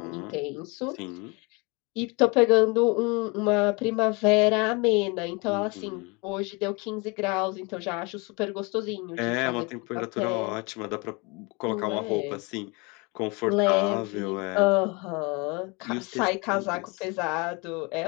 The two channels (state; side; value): quieter; right; 28.7 dB